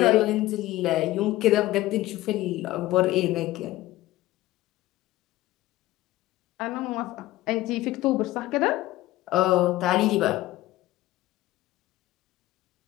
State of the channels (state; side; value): quieter; right; 16.6 dB